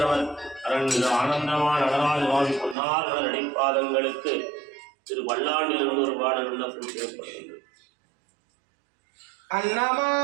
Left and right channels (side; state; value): left; drops out; at 2.8 s